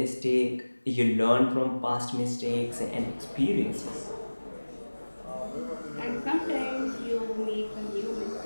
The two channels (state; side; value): inverted; both; correlation -1.00